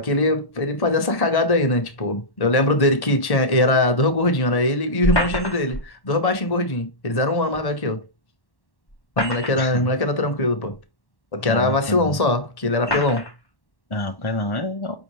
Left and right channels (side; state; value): right; late; 1.1 ms